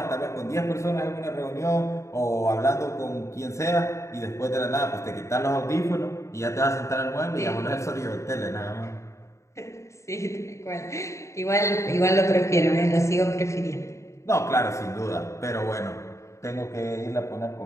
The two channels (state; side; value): late; right; 0.14 ms